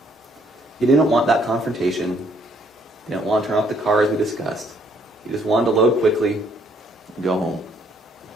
He didn't want that confrontation. He didn't want to turn off the car as we discussed. He just wanted to load quickly and go home.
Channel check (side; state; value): both; normal; correlation 0.66